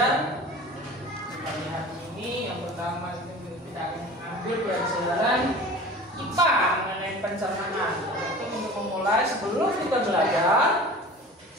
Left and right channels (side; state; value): both; normal; correlation 0.39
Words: Pagi hari ini yang pertama kita akan ambil pelajaran IPA mengenai pencernaan. Untuk memulai, sebelum kita belajar,